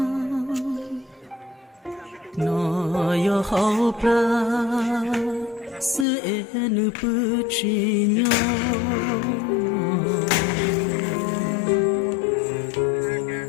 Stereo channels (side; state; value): right; drops out; at 6.1 s